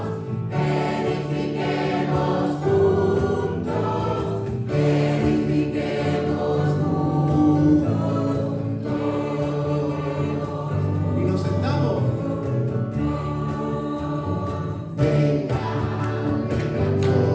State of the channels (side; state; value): both; identical; correlation 1.00